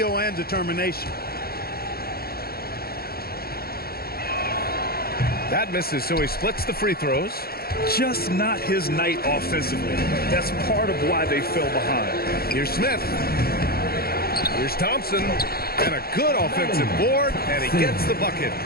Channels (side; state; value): right; late; 0.44 ms